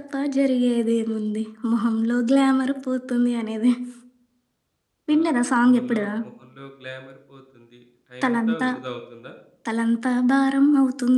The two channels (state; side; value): identical; both; correlation 1.00